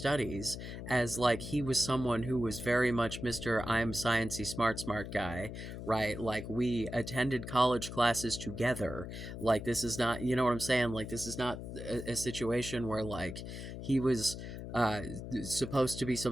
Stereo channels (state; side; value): noise; left; hum, 8 dB below the sound